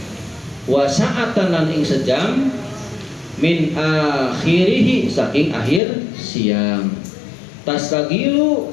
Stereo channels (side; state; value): right; drops out; at 5.8 s